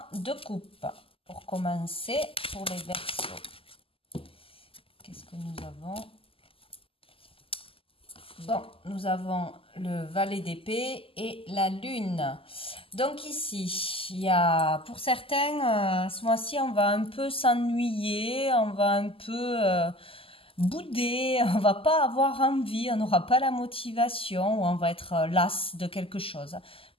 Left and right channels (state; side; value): late; right; 0.26 ms